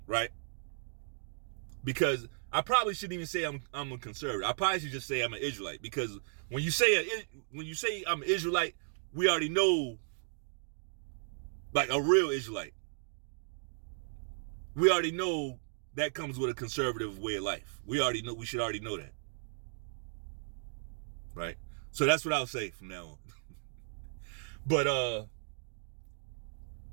right? Because I probably shouldn't even say I'm a conservative. I probably should just say I'm an Israelite, because when you say I'm an Israelite, we already know, like a real Israelite. We already know that comes with a conservative way of life. We should already know that. Right? So that's what I'll say from now on. But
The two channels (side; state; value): left; silent; digital silence